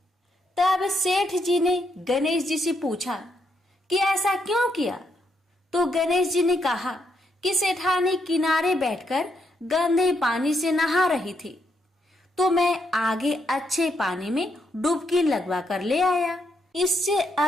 तब सेठ जी ने गणेश जी से पूछा कि ऐसा क्यों किया? तो गणेश जी ने कहा कि सेठानी किनारे बैठकर गंदे पानी से नहा रही थी तो मैं आगे अच्छे पानी में डुबकी लगवा कर ले आया। इससे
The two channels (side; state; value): both; normal; correlation 0.78